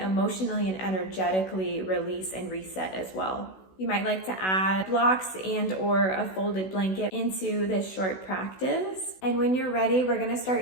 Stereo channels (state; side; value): late; right; 16 ms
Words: and energetically release and reset as well. You might like to add blocks and or a folded blanket into this short practice. And when you're ready, we're gonna